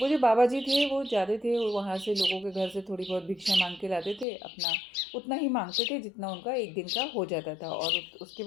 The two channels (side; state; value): right; drops out; at 4.2 s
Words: वो जो बाबा जी थे वो जाते थे वहाँ से, लोगों के घर से थोड़ी बहुत भिक्षा मांग के लाते थे, अपना उतना ही मांगते थे जितना उनका एक दिन का हो जाता था, और उसके